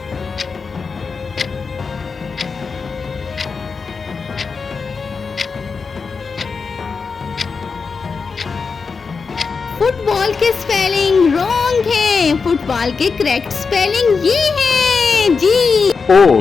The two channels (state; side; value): quieter; right; 5.0 dB